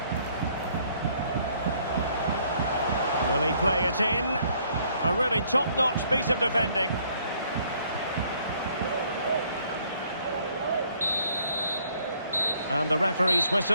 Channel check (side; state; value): both; inverted; correlation -0.64